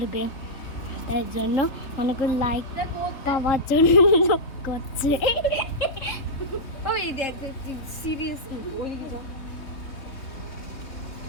তাই জন্য অনেক লাইক পাওয়ার জন্য করছে। ওই দেখ সিরিয়াস ওই যা।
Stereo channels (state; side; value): late; right; 3.7 ms